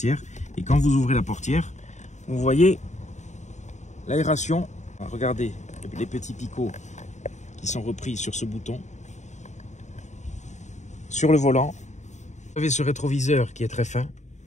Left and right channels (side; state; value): right; late; 0.34 ms